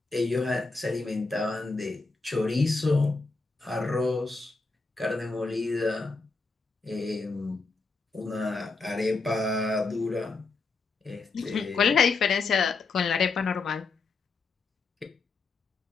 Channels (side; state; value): right; quieter; 4.0 dB